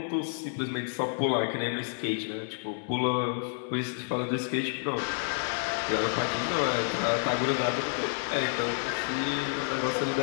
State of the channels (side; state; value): right; silent; 58 dB below the other